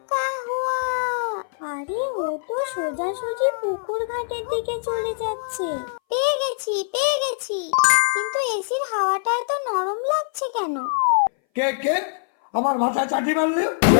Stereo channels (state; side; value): silent; right; 60 dB below the other